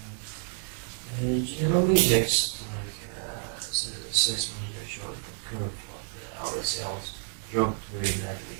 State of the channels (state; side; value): silent; left; 58 dB below the other